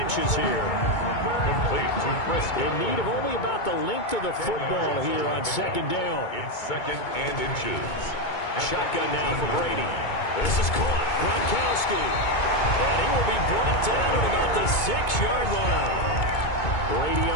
here. Complete to Frisco. In need of only about the length of the football here on second down. It's 2nd and inches. Shotgun now for Brady. This is caught. Gronkowski. And he will be brought down at about the 6-yard line. Brady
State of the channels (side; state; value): right; late; 2.2 ms